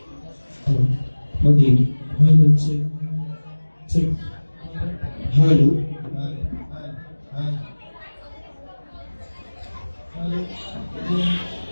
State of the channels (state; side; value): inverted; both; correlation -1.00